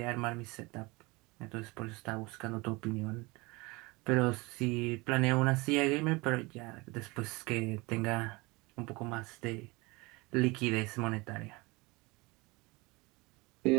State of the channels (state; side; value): quieter; left; 24.5 dB